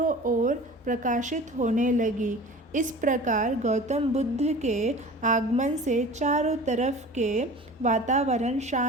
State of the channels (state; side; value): normal; both; correlation 0.39